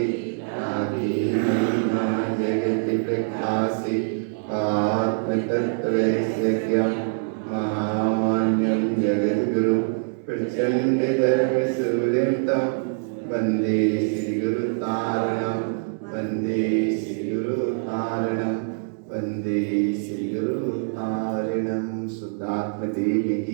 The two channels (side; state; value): left; silent; digital silence